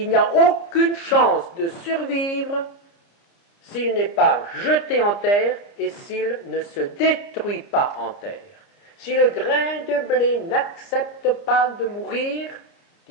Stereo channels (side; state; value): right; late; 30 ms